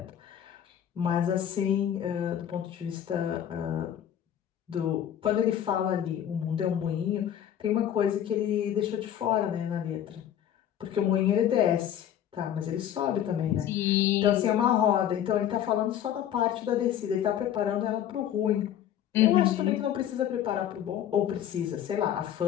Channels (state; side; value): quieter; right; 10.4 dB